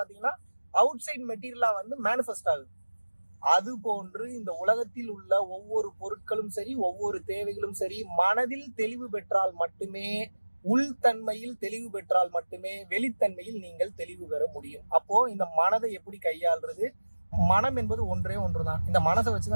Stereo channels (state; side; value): inverted; both; correlation -1.00